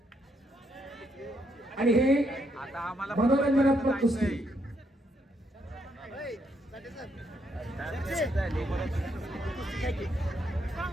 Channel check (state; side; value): normal; both; correlation 0.76